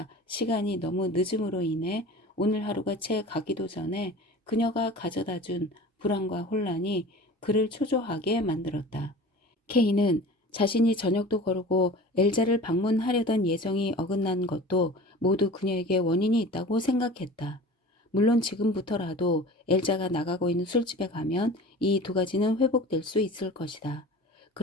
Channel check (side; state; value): both; normal; correlation 0.39